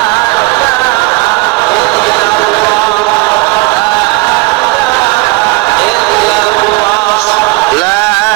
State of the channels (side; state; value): left; quieter; 25.0 dB